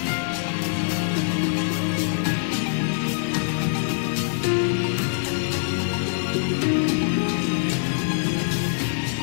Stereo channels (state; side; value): silent; right; digital silence